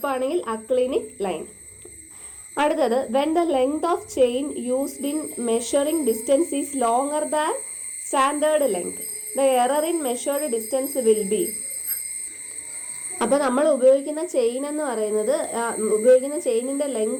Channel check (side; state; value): both; identical; correlation 1.00